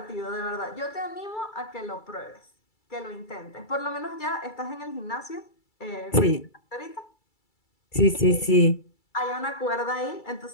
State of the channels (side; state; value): right; late; 2.3 ms